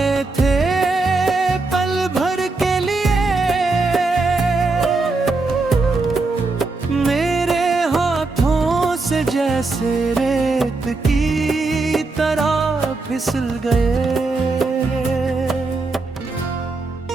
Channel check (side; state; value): left; quieter; 3.6 dB